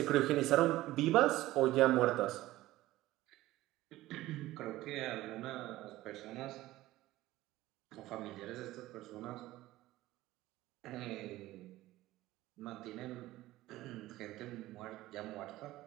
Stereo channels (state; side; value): quieter; left; 16.6 dB